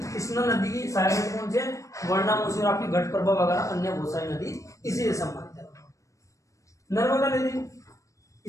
कृष्णा नदी की सहायक नदी कौन सी है? वर्ण, मूसी और आपकी घटप्रभा वगैरह अन्य बहुत सारी नदी इसी से संबंधित है। नर्मदा नदी,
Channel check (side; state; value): right; late; 0.15 ms